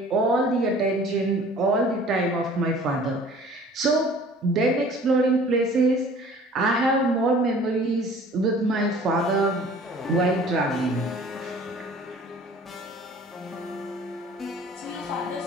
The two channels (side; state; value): both; normal; correlation 0.49